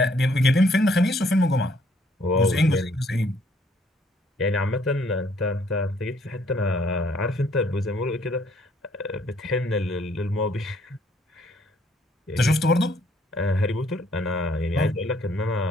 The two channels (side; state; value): both; normal; correlation 0.65